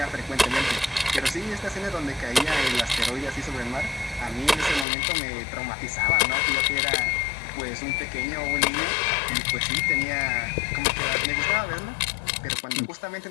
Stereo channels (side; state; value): right; drops out; at 4.9 s